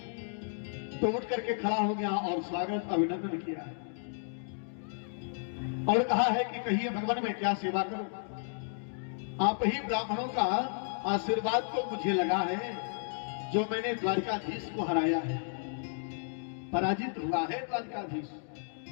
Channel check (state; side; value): silent; right; digital silence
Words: तो उठ करके खड़ा हो गया और स्वागत अभिनंदन किया है और कहा है कि कहिए भगवान मैं क्या सेवा करूं। आप ही ब्राह्मणों का आशीर्वाद तो मुझे लगा है जो मैंने द्वारकाधीश को हराया है, पराजित हुआ है द्वारकाधीश।